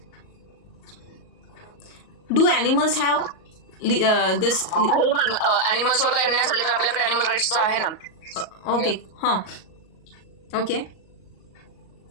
Do animals have this? ॲनिमल्सवर काही अन्याय झाले तर आपल्याकडे ॲनिमल राईट्सचा आहे ना। ओके हाँ ओके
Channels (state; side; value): late; right; 38 ms